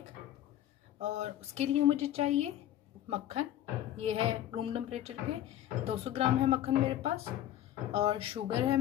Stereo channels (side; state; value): right; quieter; 12.3 dB